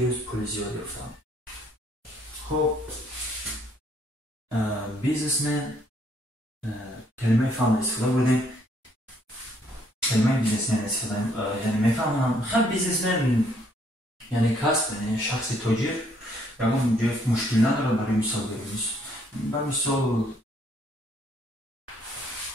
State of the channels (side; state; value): both; normal; correlation 0.67